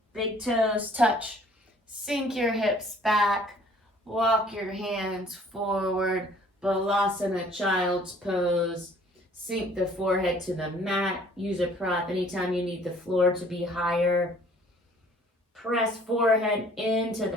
Big toes touch. Sink your hips back. Walk your hands forward. Balasana, child's pose. Sink the forehead to the mat. Use a prop anytime you need the floor to be higher. Press forehead into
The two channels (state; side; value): normal; both; correlation 0.56